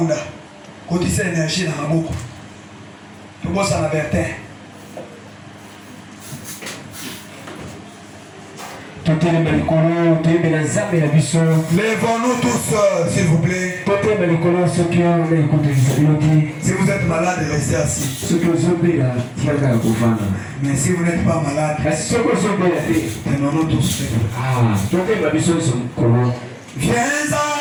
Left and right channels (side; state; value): both; identical; correlation 1.00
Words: quand il s'est énergie dans la boucle, tout le monde s'en avertait. Lèvons-nous tous, s'il vous plaît. Si vous êtes malade, restez assis. Mais si vous n'êtes pas malade, tenons-nous tous. Viens